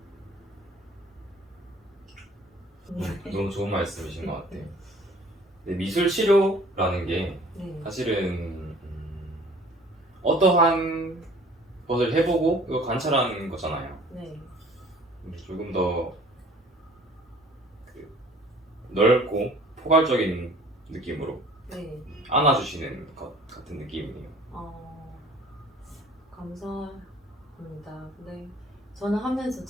너무 좋은 말씀이신 것 같아요. 미술 치료라는 게 네. 사실은 어떠한 것을 해보고 이거 관찰하는 거잖아요. 네. 조금 더 넓고 포괄적인 느낌으로 네. 안아주시는 것 같은 느낌이에요. 감사합니다. 네. 저는 하면서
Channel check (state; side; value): normal; both; correlation 0.51